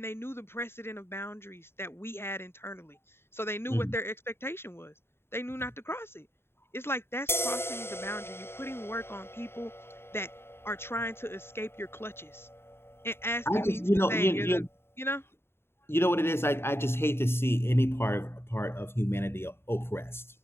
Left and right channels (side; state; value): right; late; 0.12 ms